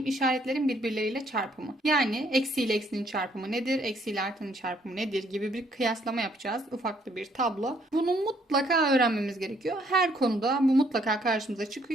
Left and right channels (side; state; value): both; normal; correlation 0.67